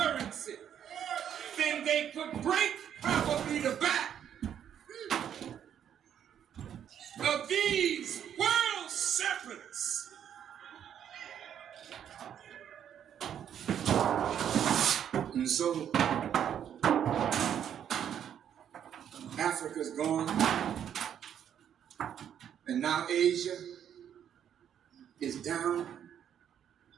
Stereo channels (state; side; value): quieter; left; 9.3 dB